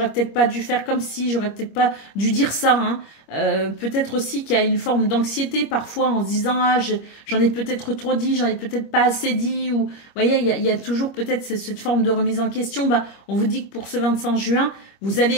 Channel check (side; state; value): right; late; 25 ms